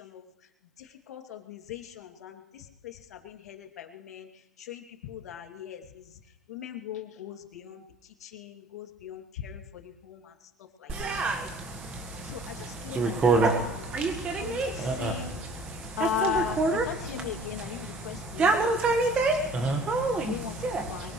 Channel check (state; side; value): normal; both; correlation 0.50